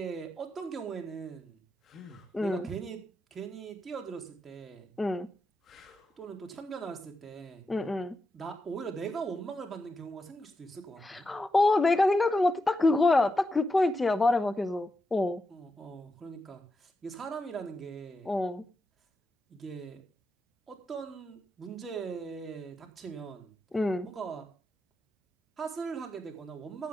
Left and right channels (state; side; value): normal; both; correlation 0.87